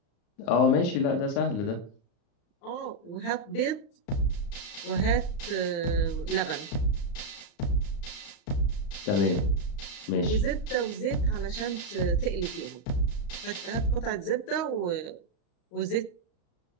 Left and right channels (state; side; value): late; right; 35 ms